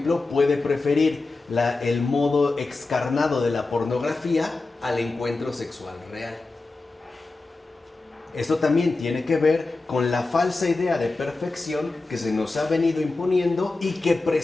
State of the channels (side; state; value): right; quieter; 3.4 dB